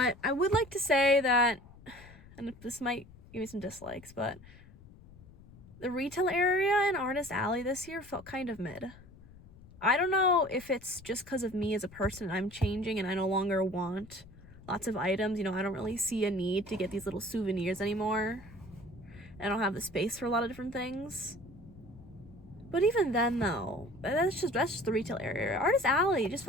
I would like to say that, and this might give me some dislikes, but the retail area in Artist Alley this year felt kind of mid. I don't know if it's just because of me as a person. I'm changing and I no longer want lots of items. You know, I don't really see a need to get these little souvenirs anymore. I don't have the space for a lot of different things. But even then though, that's just the retail area. Artist Alley just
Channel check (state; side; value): noise; left; rumble, 21 dB below the sound